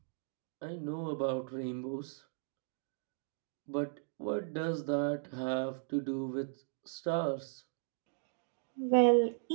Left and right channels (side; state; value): left; silent; digital silence